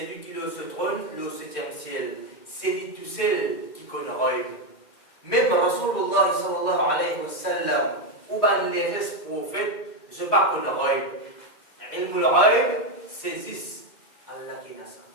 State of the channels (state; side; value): late; right; 2.1 ms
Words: qui est au trône, le 7e ciel. C'est lui tout seul qui qu'on roule. Même Rasulullah sallallahu alayhi wa sallam, ou ben les restes prophètes, je ne pas qu'on roule. Ilmul roule, saisissent Allah qui n'a ça.